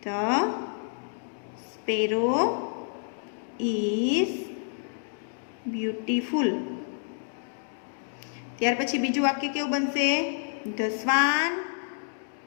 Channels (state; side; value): silent; right; digital silence